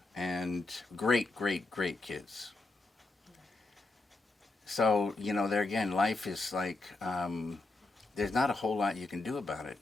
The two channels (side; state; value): right; quieter; 3.2 dB